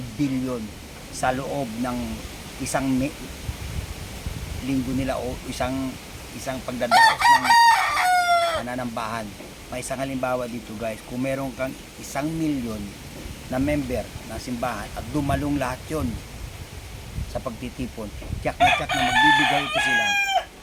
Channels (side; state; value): both; identical; correlation 1.00